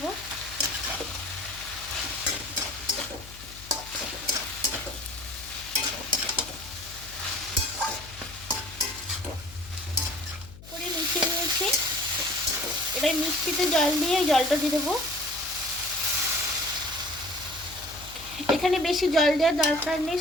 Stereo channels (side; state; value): left; noise; hum, 17 dB below the sound